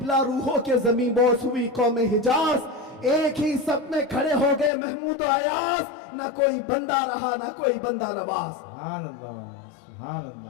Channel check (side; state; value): right; drops out; at 4.7 s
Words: रूहों के जमी बोस हुई कौम हिजाज। एक ही सब में खड़े हो गए महमूद अयाज, ना कोई बंदा रहा ना कोई बंदा नवाज। सुभान अल्लाह, सुभान